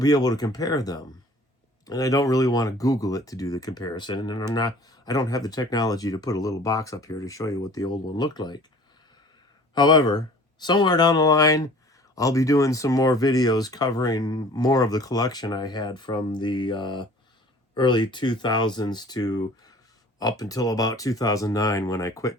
be able to compare them. And I don't really want to Google it to do the comparison. And I don't have the technology to put a little box up here to show you what the old one looked like. However, somewhere down the line, I'll be doing some more videos covering more of the collection I had from the early 2000s to up until about 2009 when I quit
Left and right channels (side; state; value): both; normal; correlation 0.48